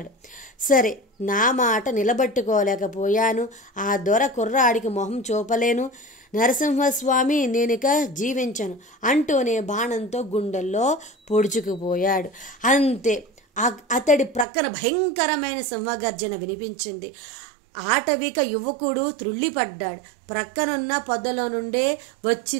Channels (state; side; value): drops out; left; at 14.5 s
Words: సరే, నా మాట నిలబెట్టుకోలేకపోయాను. ఆ దొర కుర్రాడికి మొహం చూపలేను. నరసింహస్వామి, నేనిక జీవించను అంటూనే బాణంతో గుండెల్లో పొడుచుకుపోయాడు. అంతే, అతడి ప్రక్కన భయంకరమైన సింహగర్జన వినిపించింది. ఆటవిక యువకుడు త్రుళ్ళిపడ్డాడు. ప్రక్కనున్న పొదలో నుండే